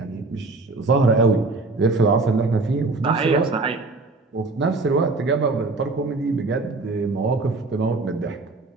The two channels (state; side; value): quieter; left; 3.5 dB